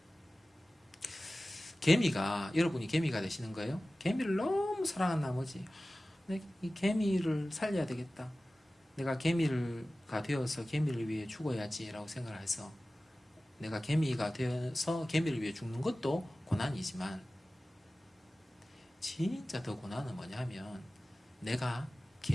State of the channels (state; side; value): normal; both; correlation 0.96